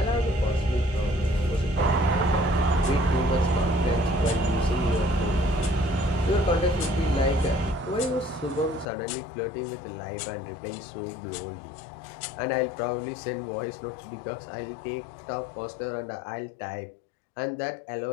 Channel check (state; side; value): drops out; right; at 8.8 s